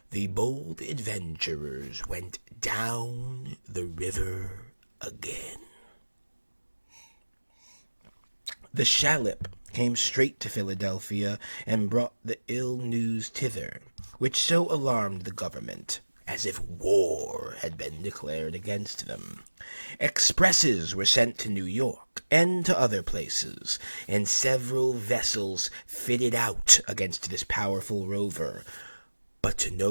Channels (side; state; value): both; inverted; correlation -1.00